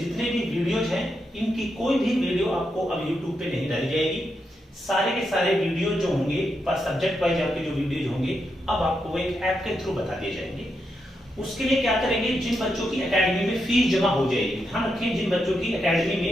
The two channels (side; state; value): both; normal; correlation 0.84